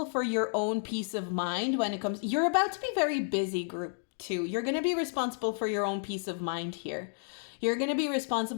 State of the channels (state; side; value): silent; right; digital silence